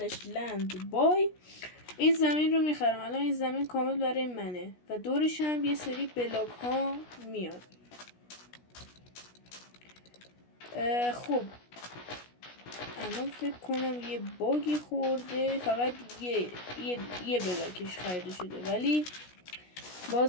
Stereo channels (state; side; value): late; right; 16 ms